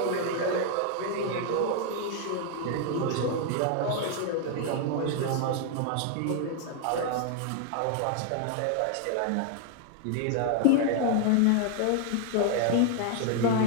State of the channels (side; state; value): both; different; correlation 0.00